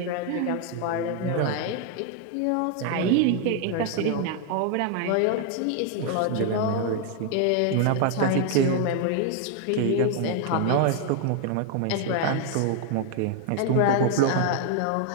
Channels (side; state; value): both; different; correlation 0.00